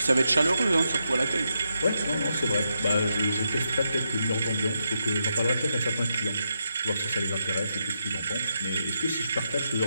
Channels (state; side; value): inverted; both; correlation -0.83